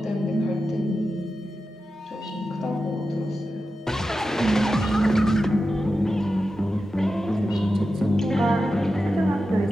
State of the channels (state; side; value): normal; both; correlation 0.91